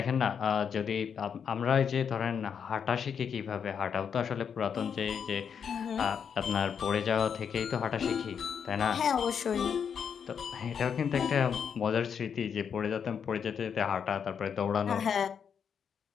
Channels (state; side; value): quieter; right; 7.2 dB